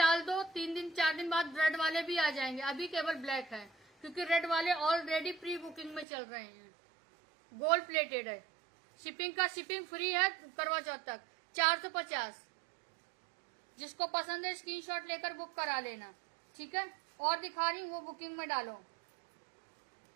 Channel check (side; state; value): left; drops out; at 6.1 s